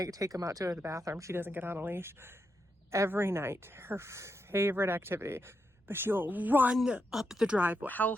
take them out to the bathroom, she doesn't get on a leash. Every night, her favorite activity, but she'll run up the driveway, hell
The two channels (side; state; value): both; normal; correlation 0.83